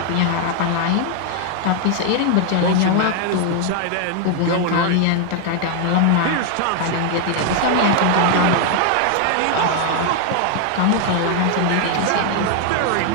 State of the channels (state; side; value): different; both; correlation 0.00